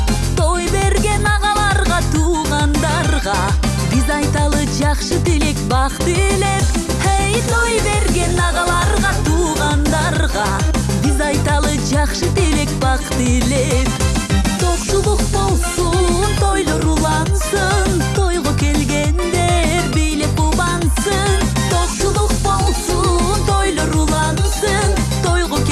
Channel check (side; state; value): both; identical; correlation 1.00